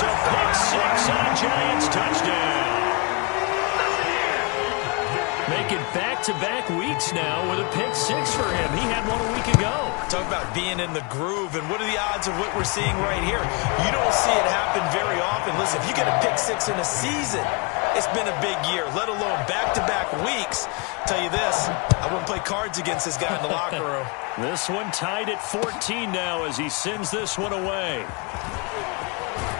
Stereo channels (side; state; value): right; quieter; 31.4 dB